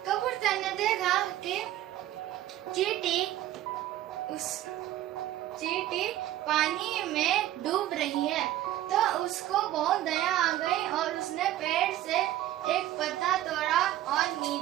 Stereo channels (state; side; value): quieter; left; 14.1 dB